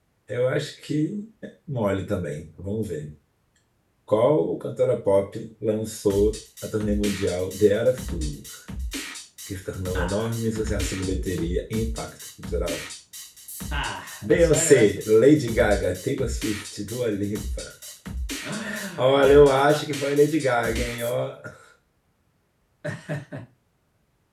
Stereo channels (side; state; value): both; identical; correlation 1.00